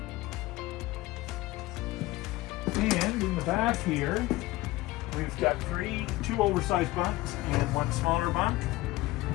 And in the back here, we've got two oversized bunks and one smaller bunk.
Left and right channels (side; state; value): right; quieter; 18.6 dB